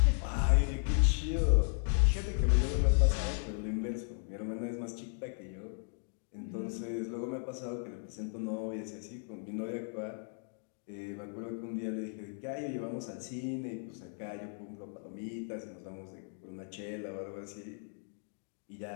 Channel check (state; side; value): silent; right; 54 dB below the other